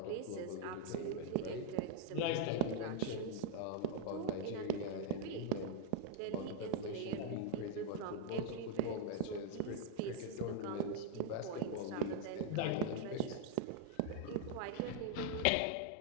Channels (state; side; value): different; both; correlation 0.00